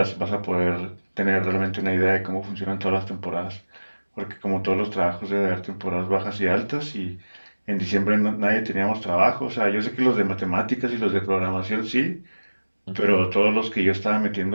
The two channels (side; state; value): both; inverted; correlation -1.00